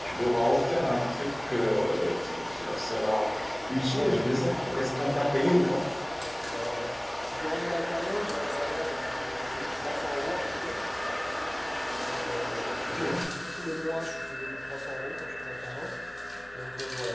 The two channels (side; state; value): left; noise; hum, 24 dB below the sound